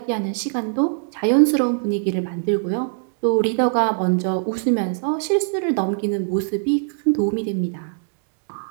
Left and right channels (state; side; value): silent; left; digital silence